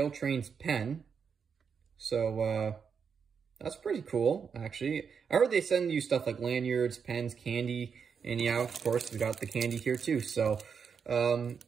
Trains pen. So that's pretty cool, actually. I heard they send you stuff like lanyards, pens, candy. And yeah, of course, we got the candy here too. So,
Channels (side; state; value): left; quieter; 6.4 dB